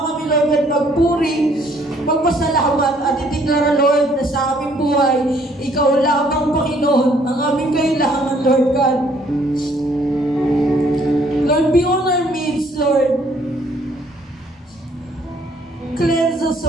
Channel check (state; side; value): normal; both; correlation 0.63